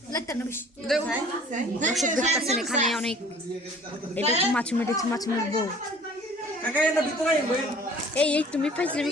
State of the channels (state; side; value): normal; both; correlation 0.50